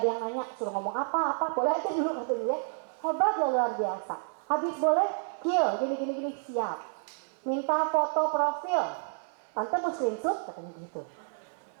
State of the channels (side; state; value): left; silent; digital silence